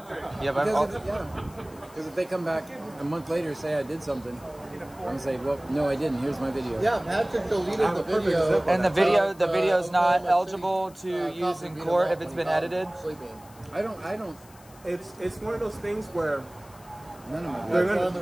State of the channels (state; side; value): noise; left; hiss, 24 dB below the sound